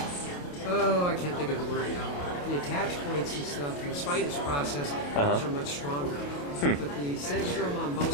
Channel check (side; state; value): right; late; 28 ms